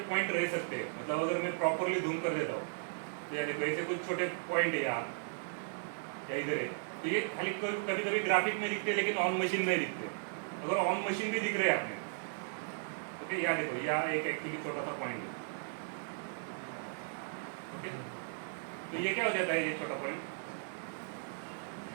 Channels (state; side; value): silent; left; 54 dB below the other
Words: पॉइंट रह सकते हैं। मतलब अगर मैं प्रॉपरली जूम कर देता हूँ तो यार देखो ऐसे कुछ छोटे पॉइंट है यार या इधर है, तो ये खाली कभी कभी ग्राफिक में दिखते हैं लेकिन ऑन मशीन में दिखते हैं। अगर ऑन मशीन भी दिख रहे हैं आपने, ओके, यहाँ देखो यहाँ एक एक्चुअली छोटा सा पॉइंट है। ओके, तो ये क्या हो जाता है, ये छोटा पॉइंट